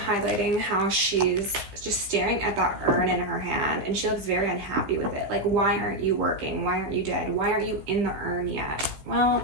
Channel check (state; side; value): late; left; 15 ms